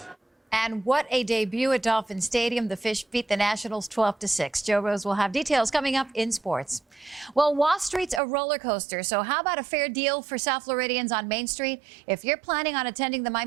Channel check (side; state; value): left; drops out; at 8.2 s